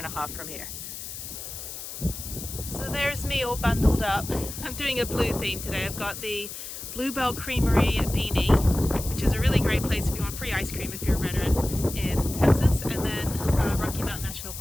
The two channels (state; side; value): noise; left; hiss, 9 dB below the sound